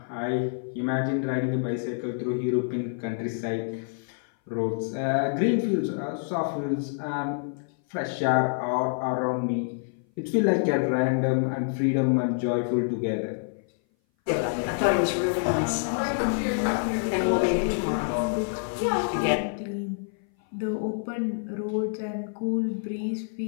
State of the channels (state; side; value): silent; right; 57 dB below the other